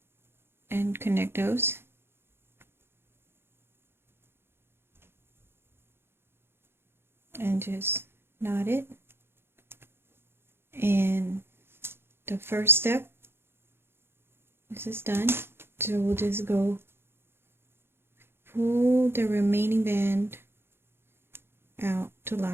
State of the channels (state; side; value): late; left; 0.11 ms